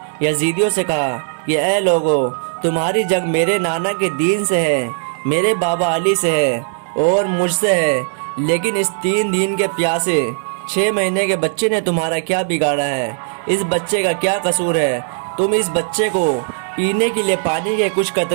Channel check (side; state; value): left; silent; 66 dB below the other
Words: یزیدیوں سے کہا کہ اے لوگو، تمہاری جنگ میرے نانا کے دین سے ہے، میرے بابا علی سے ہے اور مجھ سے ہے، لیکن اس 3 دن کے پیاسے 6 مہینے کے بچے نے تمہارا کیا بگاڑا ہے؟ اس بچے کا کیا قصور ہے؟ تم اس بچے کو پینے کے لیے پانی کے کچھ